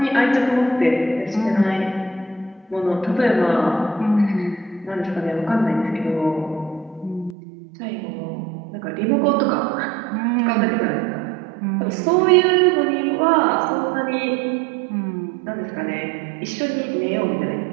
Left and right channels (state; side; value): drops out; left; at 7.4 s